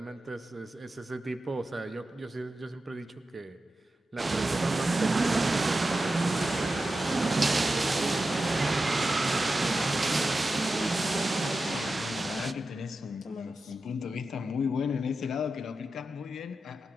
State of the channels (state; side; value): normal; both; correlation 0.91